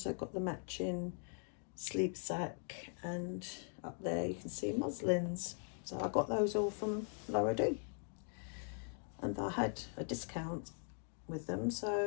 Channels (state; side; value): silent; right; 51 dB below the other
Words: got the matching sleep sack, and up there you can see muslins. So I got those all from Laura D, and I had a discount with them,